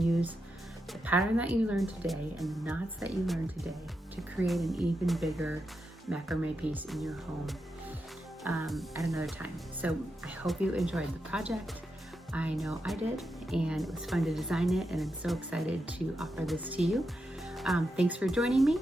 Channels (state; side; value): normal; both; correlation 0.86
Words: the pattern that you learned today and the knots that you learned today to create an even bigger macrame piece in your home at another time. So I hope you enjoyed the project. I know I did, and it was fun to design it, and I'm so excited to offer this to you. Thanks for joining me,